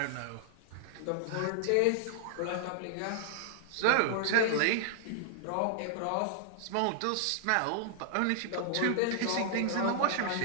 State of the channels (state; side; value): different; both; correlation -0.01